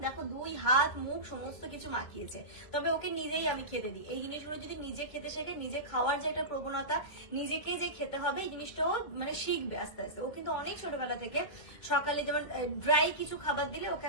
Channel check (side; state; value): right; late; 2.2 ms